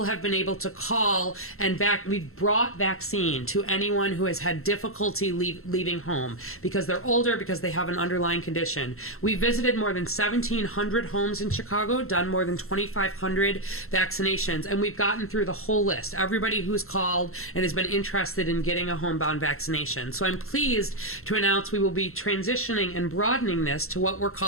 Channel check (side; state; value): right; late; 0.62 ms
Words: have been able to call and we've brought vaccine to anyone who has had difficulty leaving home because they're older, because they have an underlying condition. We visited more than 1,700 homes in Chicago, done more than 2,500 vaccinations, and we've gotten through the whole list. Everybody who's called and has been interested in getting a homebound vaccination. So I'm pleased to announce we will be transitioning and broadening this to what we're